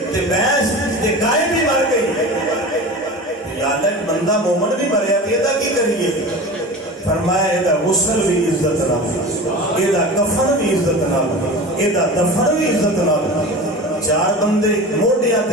تے بھینس تے گائے بھی مر گئی یا اللہ ایک بندہ مومن بھی مریا تے دا کی کریے فرمایا ایدہ غسل بھی عزت نہ ایدہ کفن بھی عزت نہ ایدہ دفن بھی عزت نہ چار بندے موڈیاں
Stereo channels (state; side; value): normal; both; correlation 0.32